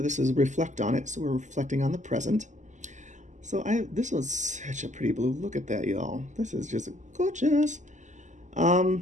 this is Reflect on It, so we're reflecting on the present. So this was such a pretty blue. Look at that, y'all. This is just gorgeous. I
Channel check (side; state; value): left; late; 0.35 ms